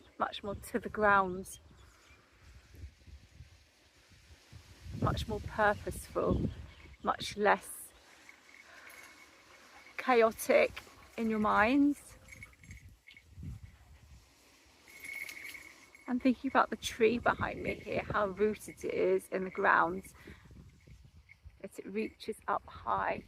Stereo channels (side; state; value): both; identical; correlation 1.00